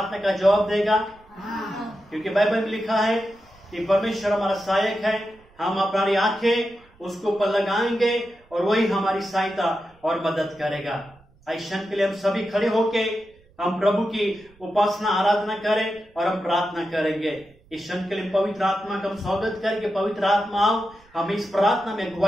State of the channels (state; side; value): noise; right; rumble, 29 dB below the sound